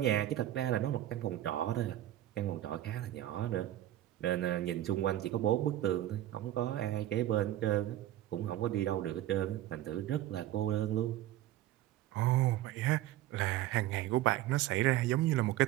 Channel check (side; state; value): left; quieter; 13.7 dB